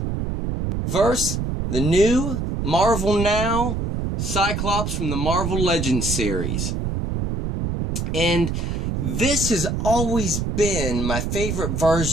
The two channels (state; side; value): noise; right; rumble, 2 dB below the sound